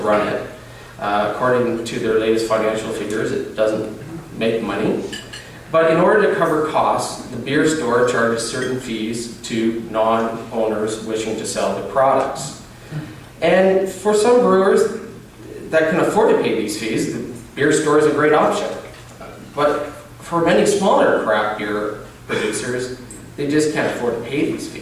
it. According to their latest financial figures, it doesn't make money. But in order to cover costs, the beer store charges certain fees to non-owners wishing to sell the products. And for some brewers that can afford to pay these fees, the beer store is a great option. But for many smaller craft beer producers, they just can't afford to pay these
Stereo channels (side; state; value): both; identical; correlation 1.00